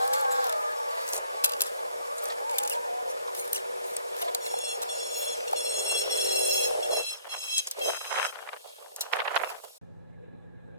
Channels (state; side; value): inverted; both; correlation -0.62